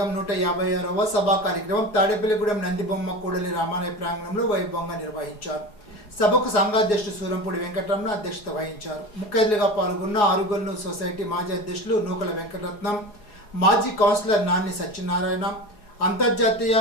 156వ సభా కార్యక్రమం తాడేపల్లిగూడెం నందిబొమ్మ కూడలి రామాలయ ప్రాంగణంలో వైభవంగా నిర్వహించారు. సభకు సంఘాధ్యక్షుడు సూరంపూడి వెంకటరమణ అధ్యక్షత వహించారు. ముఖ్య అతిథిగా పాల్గొన్న ఆరుగొల్లు సొసైటీ మాజీ అధ్యక్షులు నూకల వెంకటరత్నం, మాజీ కౌన్సిలర్ నాన్ని సత్యనారాయణ, అంతర్జాతీయ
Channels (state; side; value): late; right; 4.8 ms